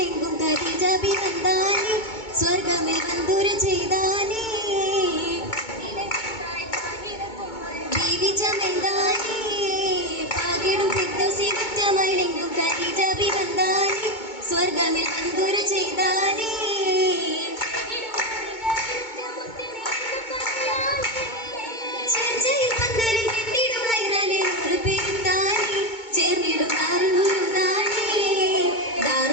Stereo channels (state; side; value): late; right; 2.2 ms